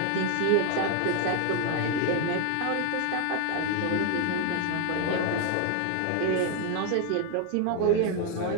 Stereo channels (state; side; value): different; both; correlation 0.01